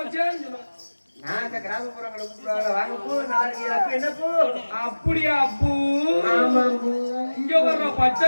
சொல்லுவேன். நான் அந்த கிராமப்புறங்களை கூப்பிடுவாங்க வாங்க பூ நாளைக்கு அப்ப என்ன பூ? அப்படியா பூ? ஆமா பூ. இங்க வர்ற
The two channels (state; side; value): inverted; both; correlation -1.00